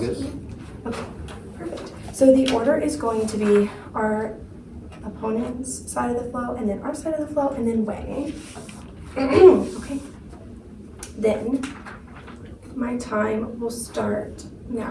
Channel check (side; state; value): both; identical; correlation 1.00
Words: this. Okay, perfect. So the order is going to be our opponent's side of the flow, and then our side of the flow, and then weighing. Okay. Then my time will start